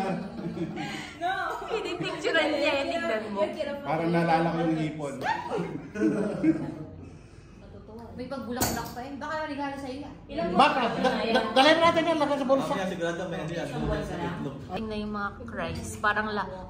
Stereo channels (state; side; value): identical; both; correlation 1.00